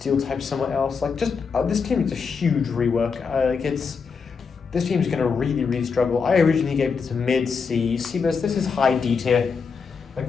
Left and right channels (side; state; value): right; quieter; 5.5 dB